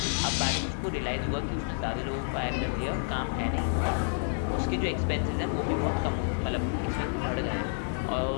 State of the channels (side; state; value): right; silent; digital silence